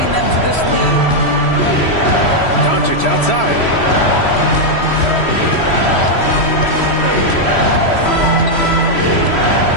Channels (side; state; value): right; late; 3.1 ms